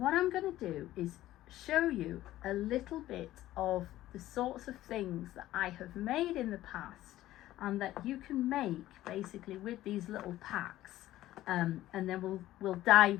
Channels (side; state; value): right; quieter; 14.8 dB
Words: I'm going to do is show you a little bit of the sorts of things that I have made in the past and that you can make basically with these little packs, and then we'll